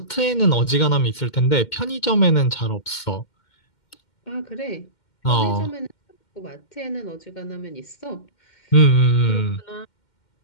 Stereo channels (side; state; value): right; late; 2.1 ms